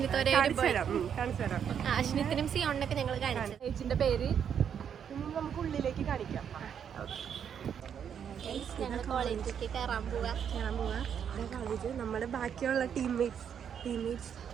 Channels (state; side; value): quieter; left; 8.1 dB